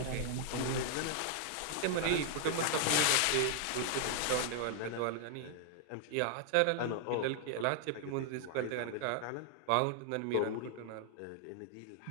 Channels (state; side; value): different; both; correlation 0.00